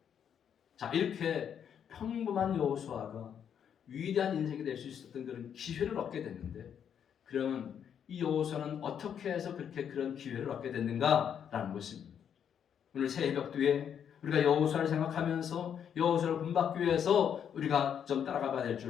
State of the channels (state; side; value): quieter; right; 8.4 dB